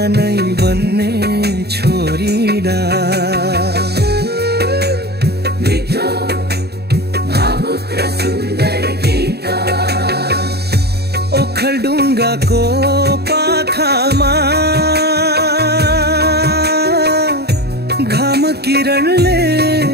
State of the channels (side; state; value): left; late; 0.47 ms